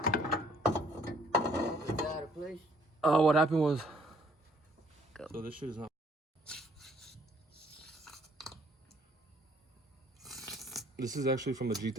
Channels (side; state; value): both; normal; correlation 0.62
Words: What happened was... So this shit is not... This is actually from the